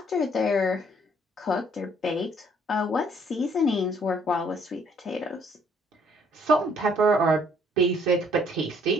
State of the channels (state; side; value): normal; both; correlation 0.63